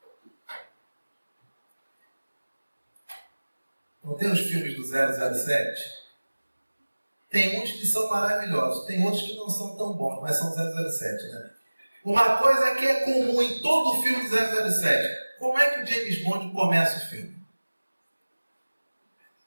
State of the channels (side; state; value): both; inverted; correlation -1.00